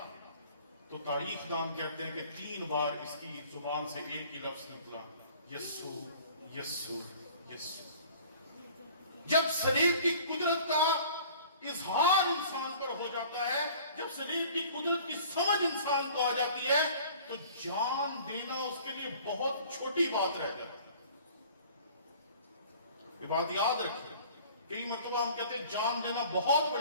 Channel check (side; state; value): both; inverted; correlation -0.49